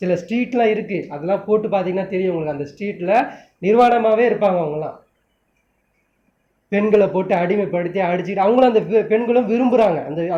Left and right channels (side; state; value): both; identical; correlation 1.00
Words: சில ஸ்ட்ரீட்லாம் இருக்குது, அதெல்லாம் போட்டு பார்த்தீங்கன்னா தெரியும் உங்களுக்கு. அந்த ஸ்ட்ரீட்டில் நிர்வாணமாகவே இருப்பாங்க. அவங்களாம் பெண்களை போட்டு அடிமைப்படுத்தி அடிச்சுக்கிட்டு அவங்களும் அந்த பெண்களும் விரும்புகிறாங்க.